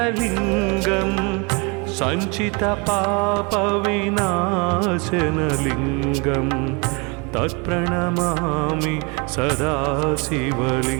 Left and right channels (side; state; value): left; quieter; 29.6 dB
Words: सञ्चितपापविनाशनलिङ्गं तत्प्रणमामि सदा